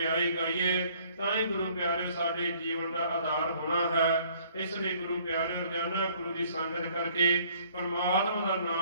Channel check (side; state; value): both; inverted; correlation -0.60